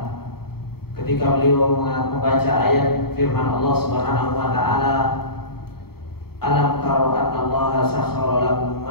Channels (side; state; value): right; late; 0.95 ms